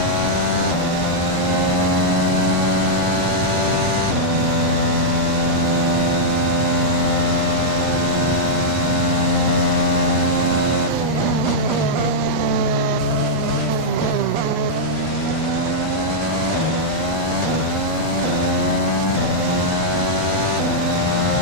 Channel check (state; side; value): late; left; 8.4 ms